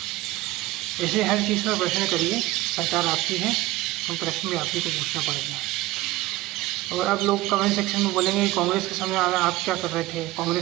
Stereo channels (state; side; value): quieter; left; 17.9 dB